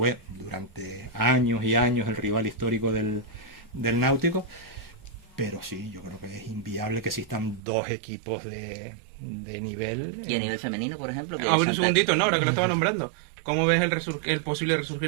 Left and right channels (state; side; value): drops out; left; at 7.6 s